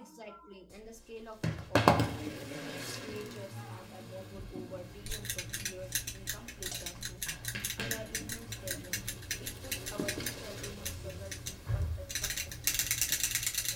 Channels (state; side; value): identical; both; correlation 1.00